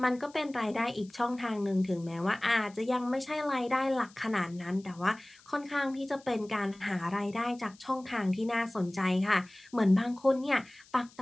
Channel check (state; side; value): noise; left; hiss, 26 dB below the sound